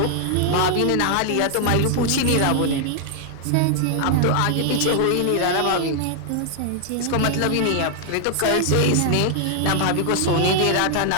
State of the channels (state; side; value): different; both; correlation 0.00